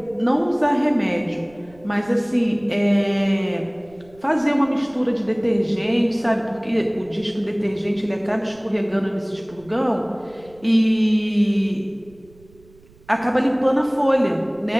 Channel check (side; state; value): right; noise; rumble, 27 dB below the sound